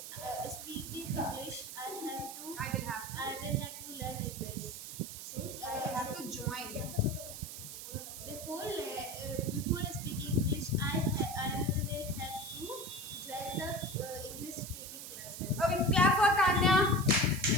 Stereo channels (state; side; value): noise; right; hiss, 10 dB below the sound